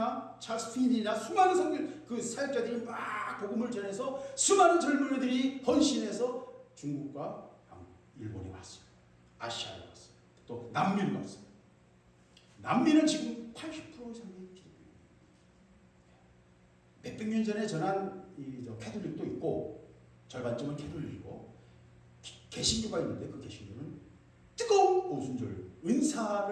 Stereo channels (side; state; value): both; identical; correlation 1.00